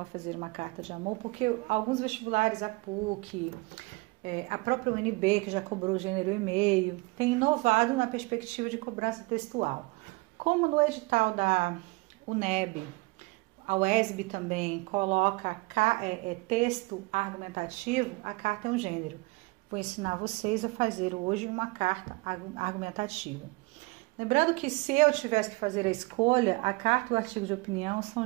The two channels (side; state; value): left; quieter; 25.0 dB